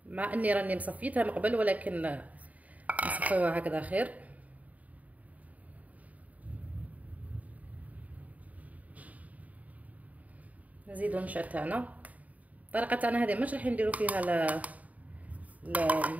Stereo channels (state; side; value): late; left; 0.072 ms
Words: مع اني راني مصفيتها من قبل ولكن نصفيوها هكذا خير. نزيدوا النشا تاعنا. الطريقه تاعنا هذه مش راح نديروا فيها